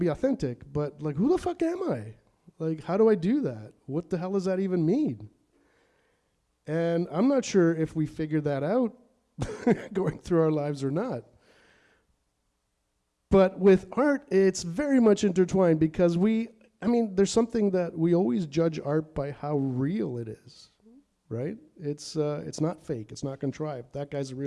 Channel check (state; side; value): identical; both; correlation 1.00